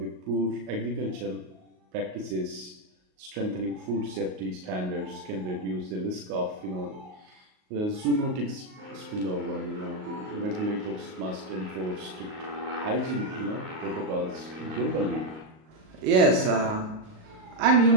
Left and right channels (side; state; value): left; late; 38 ms